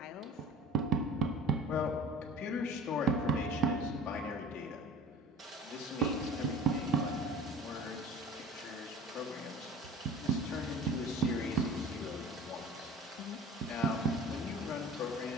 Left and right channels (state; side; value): normal; both; correlation 0.42